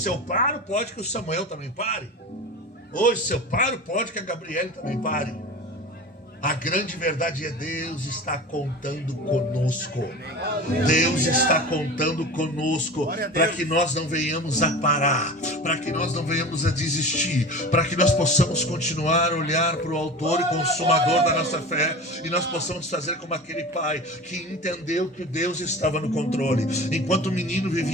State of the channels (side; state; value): both; normal; correlation 0.34